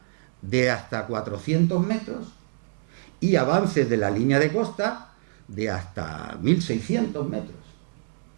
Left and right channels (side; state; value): left; silent; digital silence